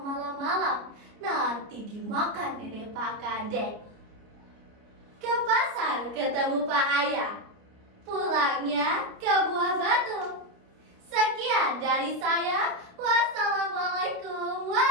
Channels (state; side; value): late; left; 29 ms